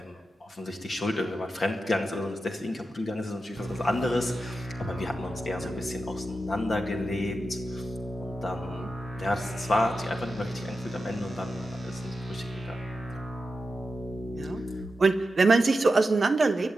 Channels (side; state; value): both; normal; correlation 0.90